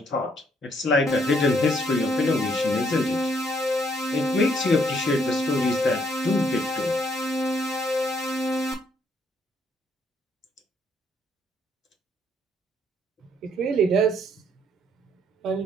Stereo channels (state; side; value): normal; both; correlation 0.69